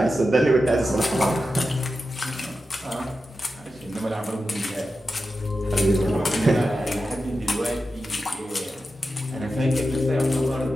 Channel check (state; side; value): normal; both; correlation 0.91